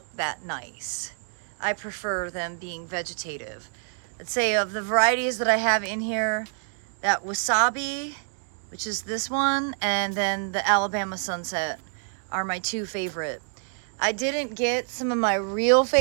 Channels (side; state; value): left; silent; 60 dB below the other